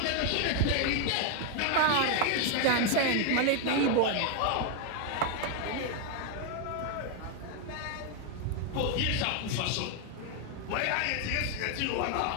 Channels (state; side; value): different; both; correlation 0.01